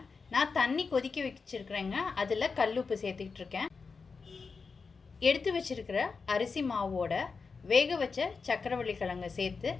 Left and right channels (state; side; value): quieter; right; 4.8 dB